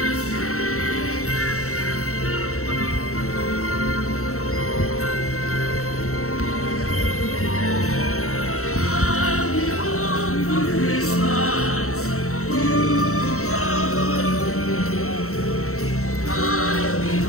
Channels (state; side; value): late; right; 0.64 ms